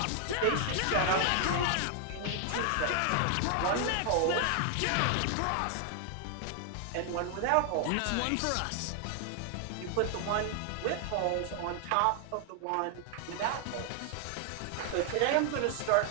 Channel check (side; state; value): both; different; correlation 0.00